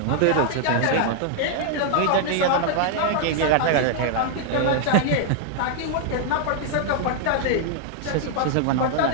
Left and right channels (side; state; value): both; different; correlation 0.00